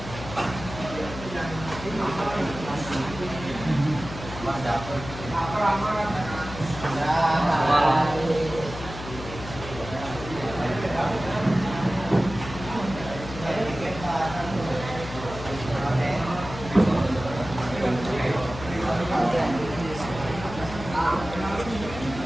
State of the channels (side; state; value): left; noise; hum, 11 dB below the sound